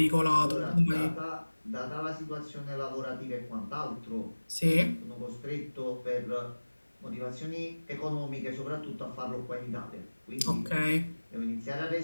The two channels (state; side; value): inverted; both; correlation -1.00